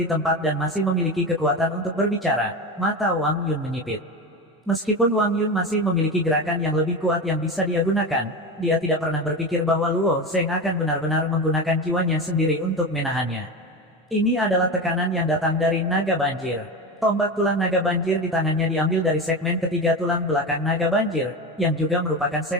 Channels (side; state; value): both; normal; correlation 0.23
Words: tempat dan masih memiliki kekuatan untuk berbicara, mata Wang Yun menyipit. Meskipun Wang Yun masih memiliki gerakan yang lebih kuat yang bisa dia gunakan, dia tidak pernah berpikir bahwa Luo Zheng akan benar-benar menggunakan jiwanya sendiri untuk menahannya. Ini adalah tekanan yang datang dari naga banjir. Tombak tulang naga banjir di tangannya diambil dari segmen ketiga tulang belakang naga banjir, yang juga merupakan